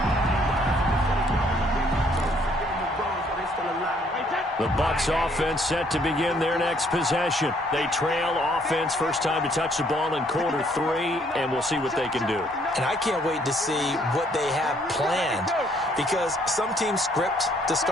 The Bucs offense set to begin their next possession. They trail offense, first time to touch the ball in quarter 3, and we'll see what they can do. And I can't wait to see what they have planned, because some teams script to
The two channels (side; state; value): both; normal; correlation 0.65